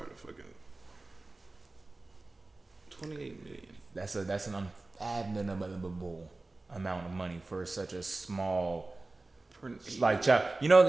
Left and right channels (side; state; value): left; quieter; 3.1 dB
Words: to fucking. 28 million. That's an unfathomable amount of money for such a small child. You